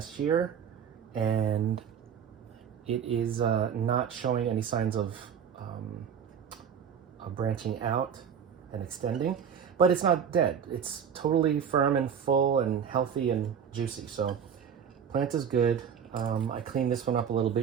year. And it is not showing any signs of branching out and extending, but it's not dead. It's totally firm and full and healthy and juicy. So plant is good. I cleaned this one up a little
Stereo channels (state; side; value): quieter; left; 7.7 dB